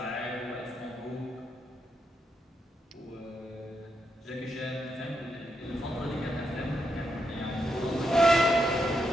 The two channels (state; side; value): normal; both; correlation 0.81